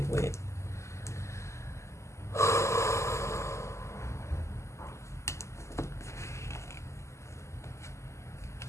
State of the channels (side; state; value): right; late; 0.13 ms